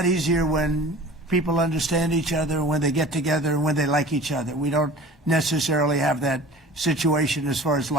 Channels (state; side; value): normal; both; correlation 0.42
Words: easier when people understand each other, when they get together, and when they like each other. We don't necessarily have that situation as far as